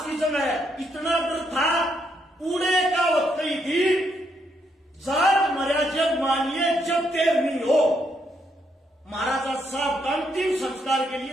की जगह इतना डर था, पुणे का वक्त ही थी, जाट मर्या जब मानिए जब देर नहीं हो। महाराजा साहब का अंतिम संस्कार के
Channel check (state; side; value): normal; both; correlation 0.76